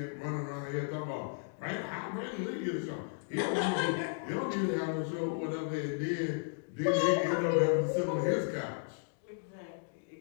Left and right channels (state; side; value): silent; right; digital silence